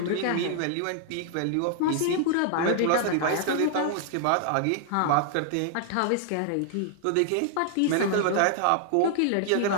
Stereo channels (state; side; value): different; both; correlation -0.01